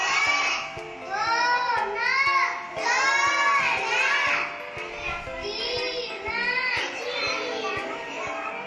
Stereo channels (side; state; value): both; identical; correlation 1.00